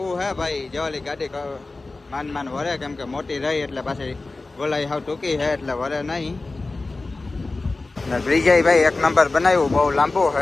હે ભાઈ, જેવાલી ગાડી માન વરે, કેમ કે મોટી રહી એટલે પાછી ગોલાઈ હાવ ટૂંકી છે એટલે વરે નહીં. ને બ્રિજે ભાઈ એક નંબર બનાવ્યું, બહુ લાંબુ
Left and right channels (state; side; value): quieter; right; 3.4 dB